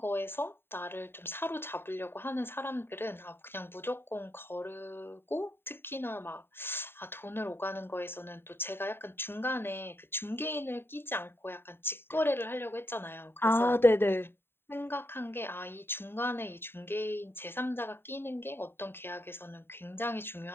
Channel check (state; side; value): late; right; 0.11 ms